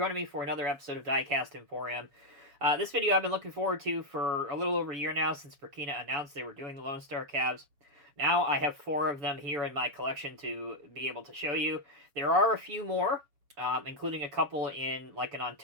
me for another episode of Diecast Emporium. This video I've been looking forward to for a little over a year now since Brekina announced they were doing the LoneStar cabs. Now I have 4 of them here in my collection to be able to show you. There are a few more, including a couple in like an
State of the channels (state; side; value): late; left; 7.1 ms